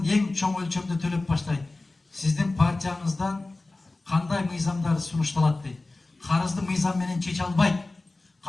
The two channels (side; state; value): right; quieter; 3.1 dB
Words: эң чоң өлчөмдө төлөп баштайт. Сиздин партияңыздан кандай мыйзамдар сунушталат дейт. Карызды мыйзам менен чече албайт.